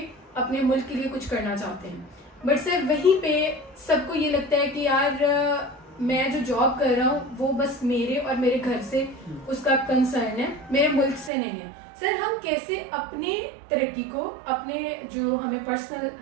اپنے ملک کے لیے کچھ کرنا چاہتے ہیں, بٹ سر وہیں پہ سب کو یہ لگتا ہے کہ یار میں جو جاب کر رہا ہوں وہ بس میرے اور میرے گھر سے اس کا کنسرن ہے, میرے ملک سے نہیں ہے. سر ہم کیسے اپنی ترقی کو, اپنے جو ہمیں پرسنل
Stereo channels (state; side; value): drops out; left; at 11.3 s